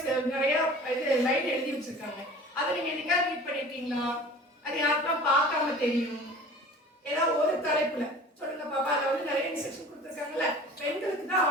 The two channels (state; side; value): normal; both; correlation 0.43